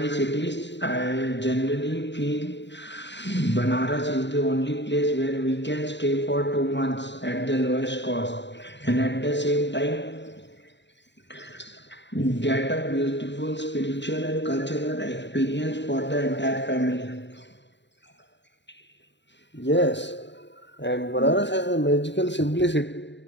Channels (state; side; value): late; right; 0.52 ms